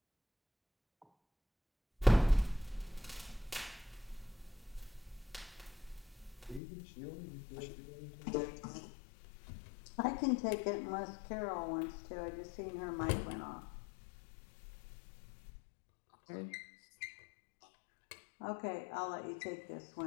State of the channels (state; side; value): drops out; right; at 6.6 s